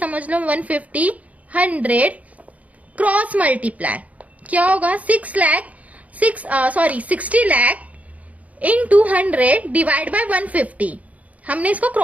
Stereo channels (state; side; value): late; left; 0.070 ms